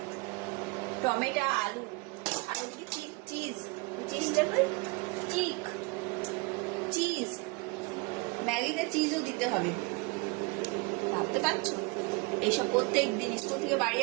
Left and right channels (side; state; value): left; quieter; 25.9 dB